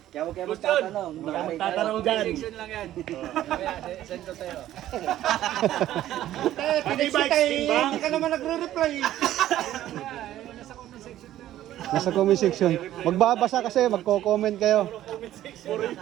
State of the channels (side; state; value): left; quieter; 13.1 dB